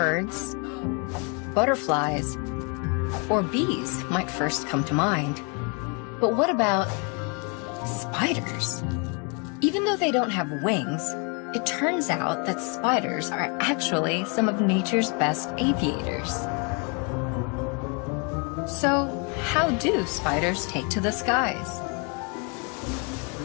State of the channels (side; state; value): right; quieter; 35.0 dB